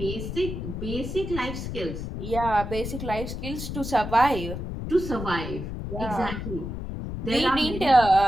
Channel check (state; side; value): noise; left; rumble, 6 dB below the sound